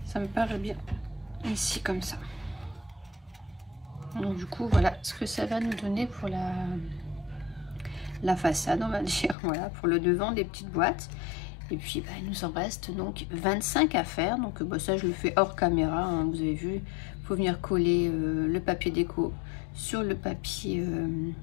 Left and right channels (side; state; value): right; drops out; at 9.3 s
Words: ça me paraît bien ici comme ça. Donc du coup voilà ce que ça va nous donner pour la façade, on va dire, voilà, pour le devant des petites boîtes. Et puis il nous en reste donc 25 à faire. Donc ça je le fais hors caméra, hein, vous avez vu, il faut venir coller le papier déco sur le papier